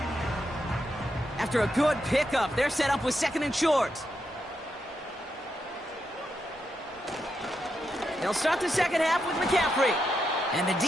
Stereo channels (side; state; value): both; normal; correlation 0.83